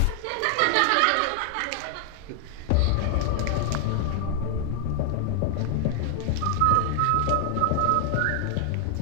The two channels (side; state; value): both; different; correlation 0.00